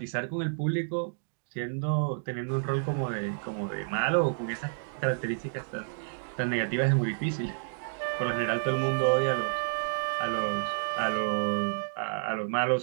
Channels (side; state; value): left; silent; digital silence